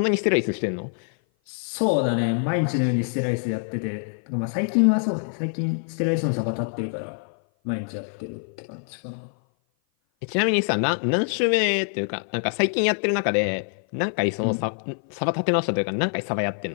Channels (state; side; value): silent; right; 56 dB below the other